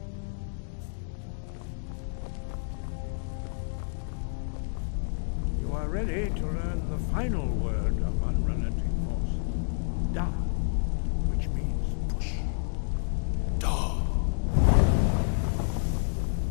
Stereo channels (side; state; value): right; silent; digital silence